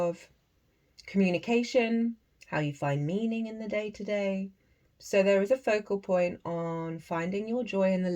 communication, how you find meaning in the day-to-day. So there is a focal point on finding your joy in the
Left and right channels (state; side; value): identical; both; correlation 1.00